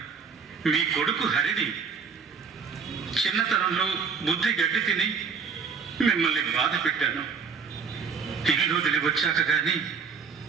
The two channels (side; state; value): left; quieter; 5.7 dB